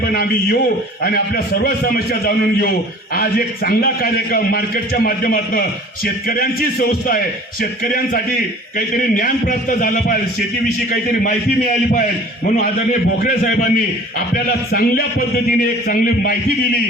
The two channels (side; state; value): both; normal; correlation 0.46